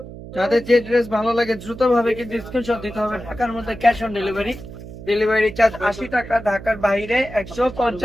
যাদের যে ড্রেস ভালো লাগে দ্রুত ভাবে কিন্তু স্ক্রিনশট দিতে হবে। ঢাকার মধ্যে cash on delivery, delivery charge 80 টাকা, ঢাকার বাইরে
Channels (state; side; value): noise; right; hum, 13 dB below the sound